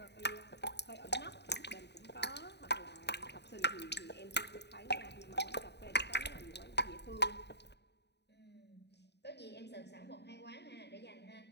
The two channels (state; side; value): late; right; 0.50 ms